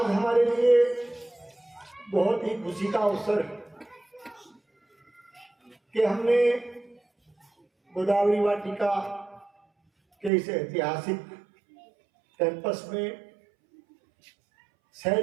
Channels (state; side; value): drops out; left; at 10.3 s